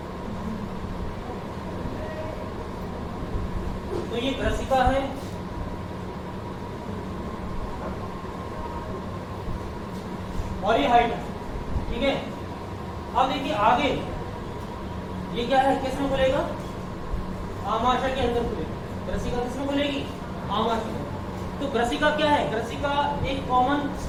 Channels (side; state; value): both; identical; correlation 1.00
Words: तो ये ग्रसिका है, और ये हाइटस। ठीक है, अब देखिए आगे ये क्या है, किस में खुलेगा? आमाशय के अंदर खुलेगा। ग्रसिका किस में खुलेगी? आमाशय। तो ग्रसिका क्या है? ग्रसिका एक कॉमन,